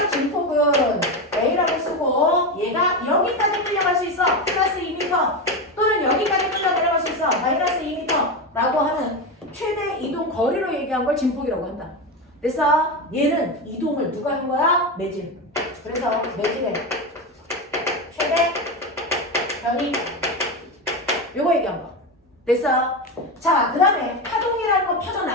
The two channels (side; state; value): both; normal; correlation 0.16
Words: 진폭은 A라고 쓰고 얘가 여기까지 끌려갈 수 있어. 플러스 2m 또는 여기까지 끌려 내려갈 수 있어. 마이너스 2m 라고 하는 최대 이동 거리로 얘기한 걸 진폭이라고 한다. 그래서 얘는 이동을 누가 한 거야? 매질. 그래서 매질의 최대 변이 요거 얘기한 거. 됐어? 자, 그 다음에 파동이라는 거